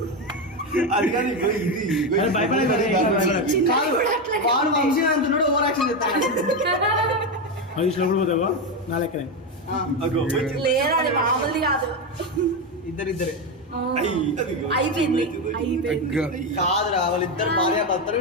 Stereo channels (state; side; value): normal; both; correlation 0.12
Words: అది కానీ వాడు వంశీ అంటున్నాడు, ఓవర్ యాక్షన్ చేస్తాడు. పోతావా నా లెక్కనే లేదా అది మామూలుది కాదు. ఇద్దరిద్దరే అయిపోయింది కాదురా, వాళ్ళిద్దరు భార్య భర్తలు